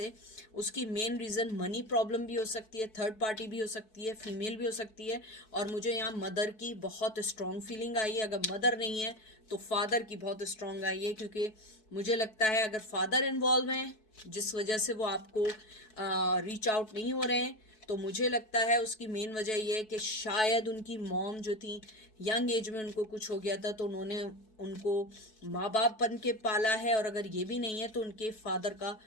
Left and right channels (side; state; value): right; late; 4.6 ms